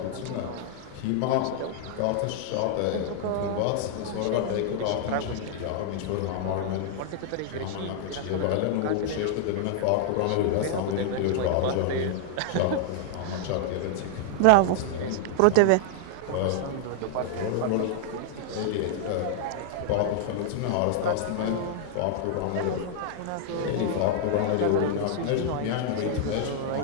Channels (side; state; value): both; different; correlation -0.01